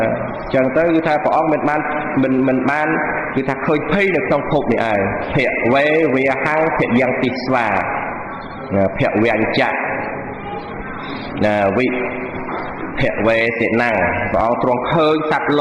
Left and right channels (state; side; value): identical; both; correlation 1.00